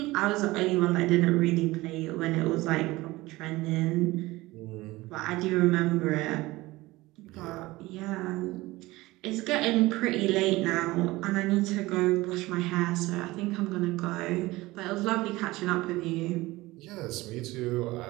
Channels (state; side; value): quieter; left; 19.7 dB